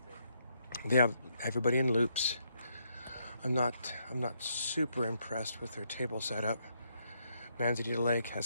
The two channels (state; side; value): inverted; both; correlation -0.76